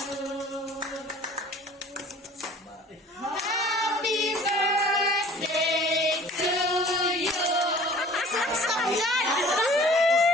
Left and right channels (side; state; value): both; normal; correlation 0.49